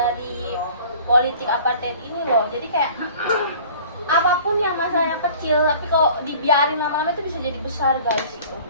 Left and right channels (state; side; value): inverted; both; correlation -0.47